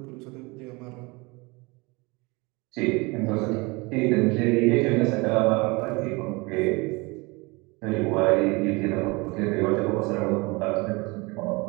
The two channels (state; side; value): quieter; left; 25.8 dB